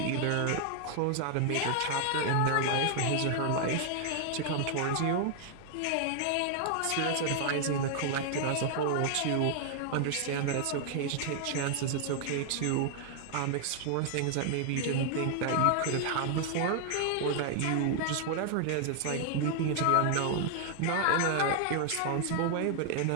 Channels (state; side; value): different; both; correlation 0.00